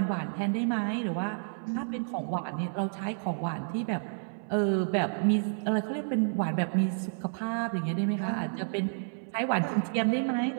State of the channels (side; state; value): left; silent; 58 dB below the other